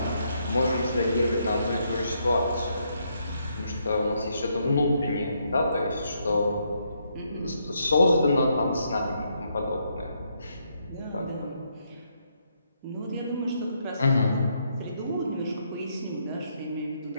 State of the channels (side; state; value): both; inverted; correlation -0.76